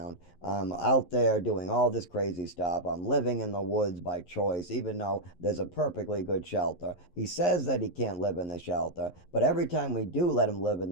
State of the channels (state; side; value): late; right; 11 ms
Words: I'm out there doing all this crazy stuff. I'm living in the woods by choice, even though there's a perfectly good shelter. He says that he can't live in the shelter, but every time we do let him live in